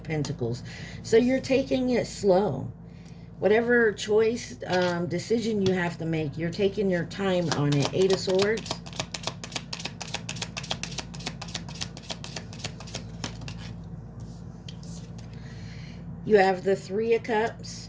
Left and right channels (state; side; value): identical; both; correlation 1.00